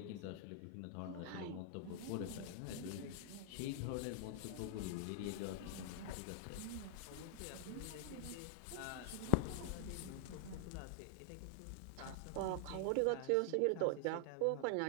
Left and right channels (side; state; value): both; different; correlation 0.00